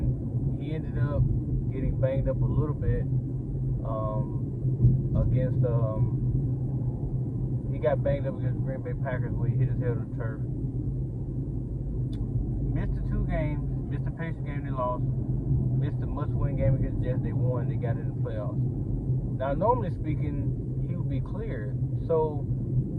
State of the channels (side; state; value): both; identical; correlation 1.00